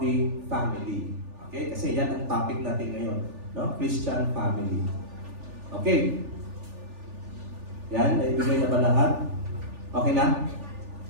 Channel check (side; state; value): left; late; 3.4 ms